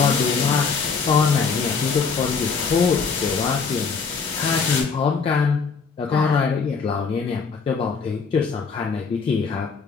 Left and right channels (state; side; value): quieter; right; 5.3 dB